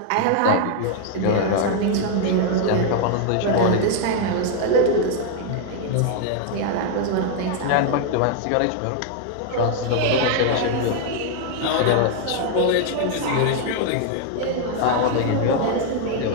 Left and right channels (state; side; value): different; both; correlation 0.00